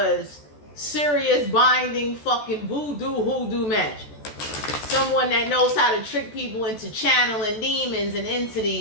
serious binding fucking hoodoo magic. Someone that knows how to trick people into channeling demons and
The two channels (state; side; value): late; right; 14 ms